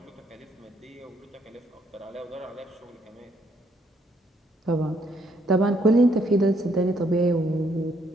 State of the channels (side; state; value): both; normal; correlation 0.70